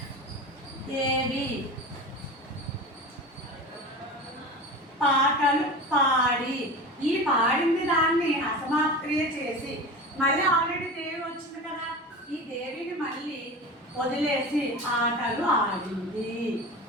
దేవి పాటలు పాడి, ఈ పాడింది దాన్ని అసమాప్క్రియ చేసి మళ్ళీ ఆల్రెడీ దేవి వచ్చింది కదా, ఈ దేవిని మళ్ళీ వదిలేసి ఆటలు ఆడింది.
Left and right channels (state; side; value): normal; both; correlation 0.30